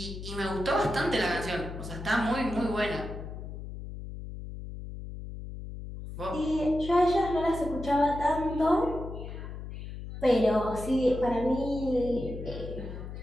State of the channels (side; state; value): left; noise; hum, 9 dB below the sound